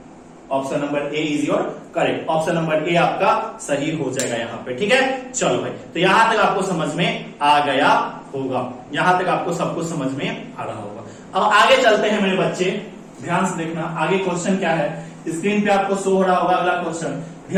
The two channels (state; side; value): identical; both; correlation 1.00